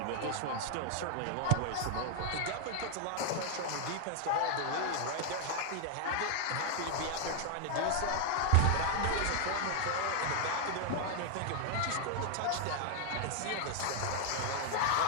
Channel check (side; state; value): both; different; correlation 0.00